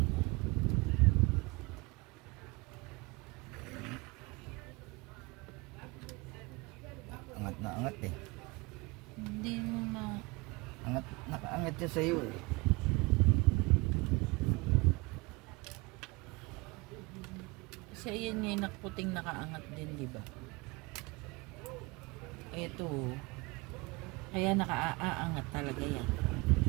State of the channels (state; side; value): quieter; left; 25.1 dB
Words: Angat na angat eh. Hindi mo na. Angat, nakaangat siya sa'yo eh. Kasi ayan nga yung puting nakaangat din, di ba? Ito. Kaya nakaaangat talaga yan.